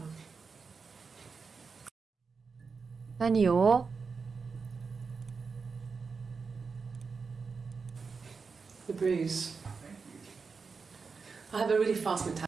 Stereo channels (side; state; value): left; quieter; 5.0 dB